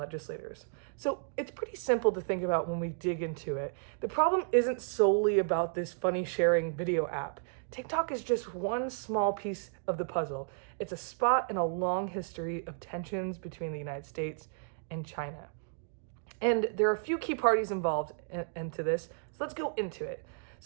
So it's pretty simple to think about when we dig into it. The problem isn't solely about this funny sharing video app. TikTok is just one small piece of the puzzle. It's a spot in a long history of tensions between the United States and China. And there are a few key parties involved into this, so let's go into it.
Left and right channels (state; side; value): silent; left; digital silence